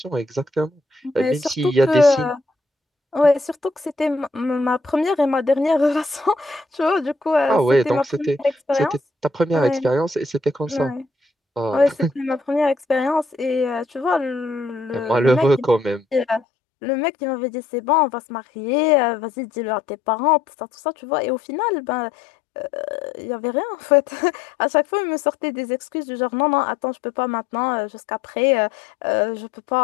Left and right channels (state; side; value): drops out; right; at 16.4 s